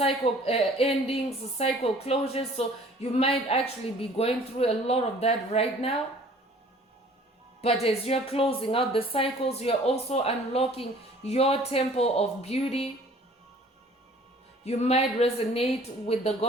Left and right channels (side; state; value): both; normal; correlation 0.52